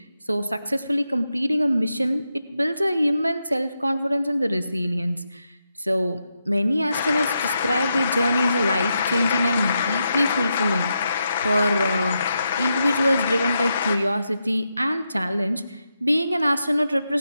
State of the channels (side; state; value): both; inverted; correlation -0.85